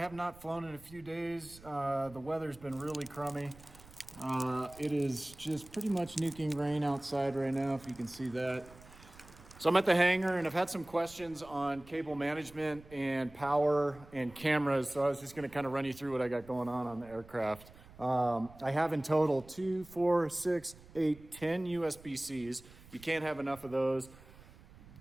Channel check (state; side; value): noise; right; rumble, 21 dB below the sound